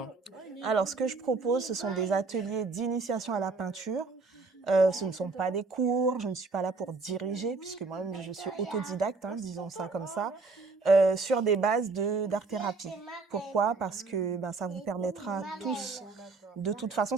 Alors ce que je propose, ce sont des ateliers d'initiation à la peinture. Ce ne sont pas des cours, je ne suis pas là pour diriger puisque moi-même je suis autodidacte, hein, disons ça comme ça, sur des bases d'art-thérapie. Pourquoi? Parce que, ben, ça vous permettra tous de toute façon,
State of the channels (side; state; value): left; quieter; 4.0 dB